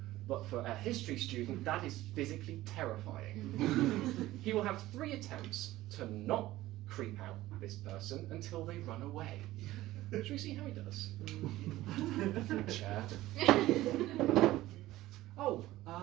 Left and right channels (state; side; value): quieter; left; 16.3 dB